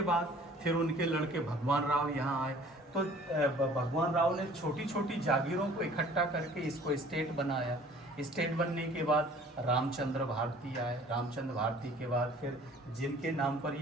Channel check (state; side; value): normal; both; correlation 0.51